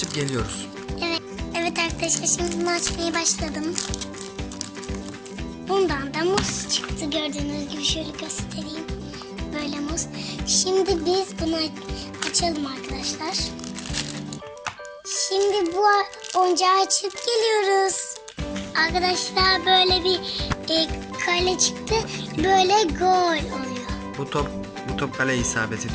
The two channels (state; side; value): identical; both; correlation 1.00